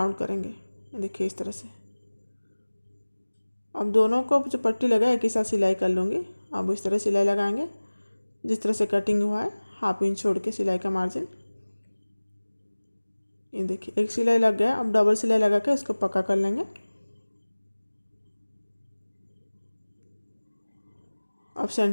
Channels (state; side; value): inverted; both; correlation -1.00